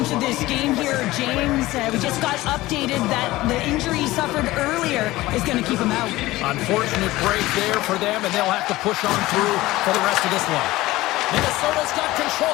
to this game here, James. We just got updated that the injury he suffered earlier is going to keep him out. Unfortunate break there for them, and they'll have to push on through for the rest of this one. Minnesota's got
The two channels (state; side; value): quieter; right; 18.0 dB